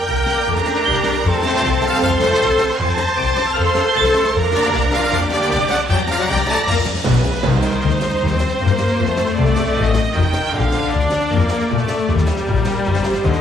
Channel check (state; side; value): normal; both; correlation 0.75